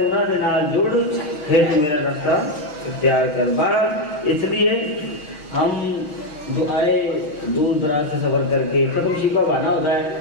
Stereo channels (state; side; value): late; right; 6.5 ms